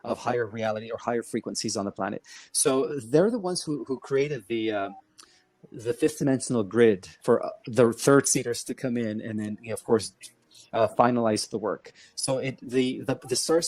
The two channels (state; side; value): identical; both; correlation 1.00